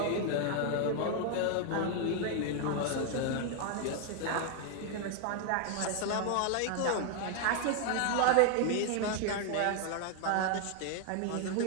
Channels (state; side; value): different; both; correlation 0.00